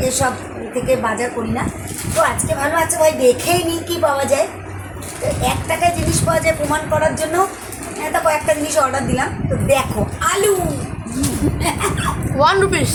এসব থেকে বাজার করি না। তো আজকে ভালো আছে ভাই, দেখেই নিই কী পাওয়া যায়। তো 1 টাকায় জিনিস পাওয়া যায় প্রমাণ করার জন্য তা কয়েকটা জিনিস অর্ডার দিলাম। তো দেখো আলু 1 রুপিস,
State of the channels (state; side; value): identical; both; correlation 1.00